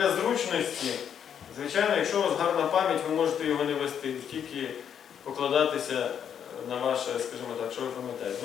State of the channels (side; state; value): right; quieter; 8.4 dB